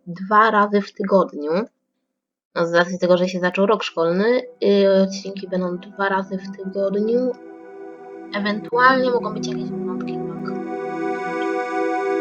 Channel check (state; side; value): identical; both; correlation 1.00